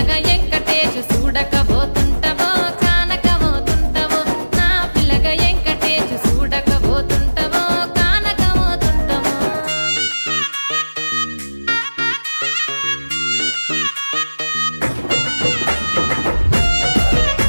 వెంకటేశు చూడకపోతుంటవో కానకపోతుంటవో నా పిలగా వెంకటేశు చూడకపోతుంటవో కానకపోతుంటవో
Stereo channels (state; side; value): inverted; both; correlation -1.00